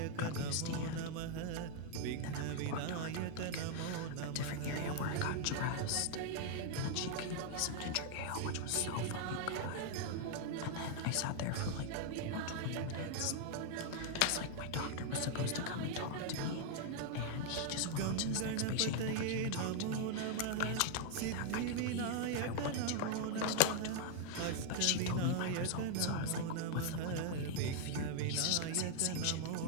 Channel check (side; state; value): both; different; correlation 0.00